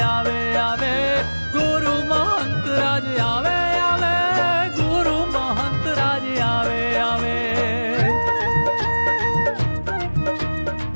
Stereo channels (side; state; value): both; inverted; correlation -1.00